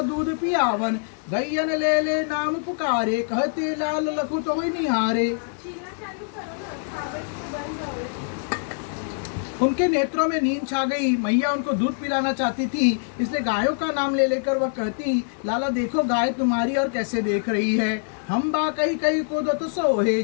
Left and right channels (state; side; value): silent; right; digital silence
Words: दूध पियावन, गैयन ले ले नाम पुकारे, कहते लाल लखु तो ही निहारे। उनके नेत्रों में नींद छा गई। मैया उनको दूध पिलाना चाहती थी, इसलिए गायों का नाम ले लेकर वह कहती, लाला देखो गाय तुम्हारी और कैसे देख रही है। हम बा कही कही कूदत सोहे,